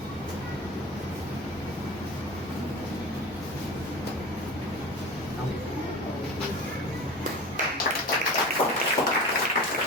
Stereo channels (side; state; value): both; normal; correlation 0.33